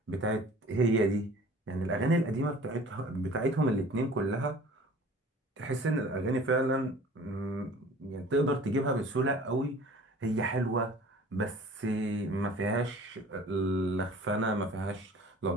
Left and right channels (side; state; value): both; normal; correlation 0.46